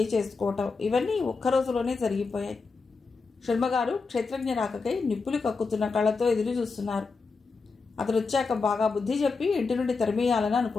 చేసుకోవటం ఇవన్నీ ఒక్కరోజులోనే జరిగిపోయాయి. శర్మగారు క్షేత్రజ్ఞ రాకకై నిప్పులు కక్కుతున్న కళ్ళతో ఎదురు చూస్తున్నారు. అతను వచ్చాక బాగా బుద్ధి చెప్పి ఇంటి నుండి తరిమేయాలని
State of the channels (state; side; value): quieter; right; 4.4 dB